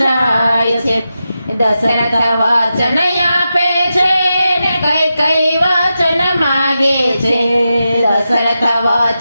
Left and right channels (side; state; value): both; inverted; correlation -0.90